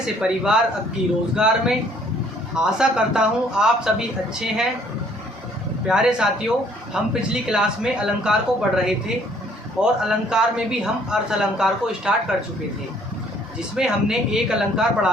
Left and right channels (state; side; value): normal; both; correlation 0.61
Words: से परिवार अक्की रोज़गार में। आशा करता हूं आप सभी अच्छे हैं। प्यारे साथियों, हम पिछली क्लास में अलंकार को पढ़ रहे थे और अलंकार में भी हम अर्थ अलंकार को स्टार्ट कर चुके थे, जिसमें हमने एक अलंकार